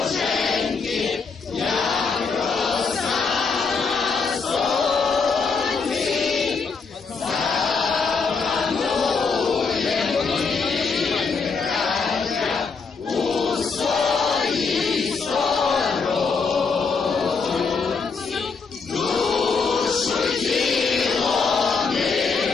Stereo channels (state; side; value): quieter; right; 4.9 dB